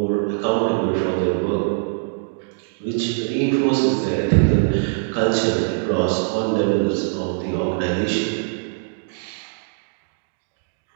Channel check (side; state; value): left; silent; digital silence